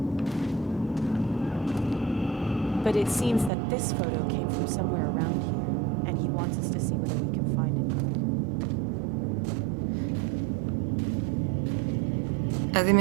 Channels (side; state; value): left; drops out; at 3.5 s